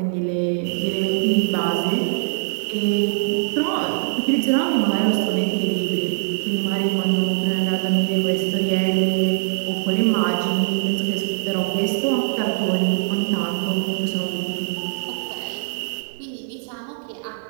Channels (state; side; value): silent; left; 64 dB below the other